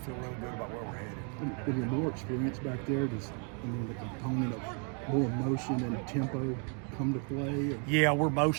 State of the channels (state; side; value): quieter; left; 39.0 dB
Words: really good about where we're headed. With your more experience back there, does the component of more motion and tempo come to play? Yeah, we're